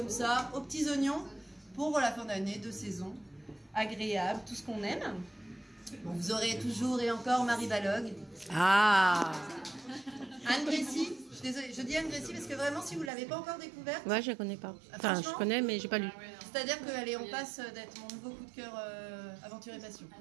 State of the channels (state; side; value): drops out; left; at 13.1 s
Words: ça, aux petits oignons, pour la fin d'année, de saison, agréable, tout ce qu'on aime. Bon, vous aurez toujours et encore Marie Balog. Ah. Anne Gressy, je suis désolée, je dis Anne Gressy parce que vraiment, si vous ne l'avez pas encore découverte... Ouais, je la connais pas. Enfin, je connais, mais j'ai pas lu. C'est-à-dire qu'on passe d'être mon nouveau coup de cœur aventure et passion.